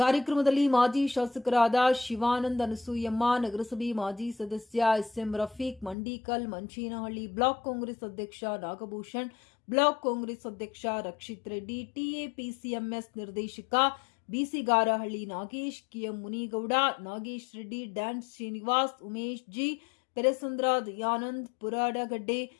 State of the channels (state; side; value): drops out; right; at 6.0 s